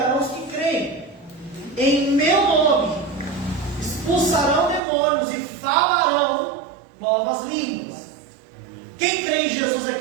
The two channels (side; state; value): left; drops out; at 4.8 s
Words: os que creem. Em meu nome expulsarão demônios e falarão novas línguas. Quem crê em Jesus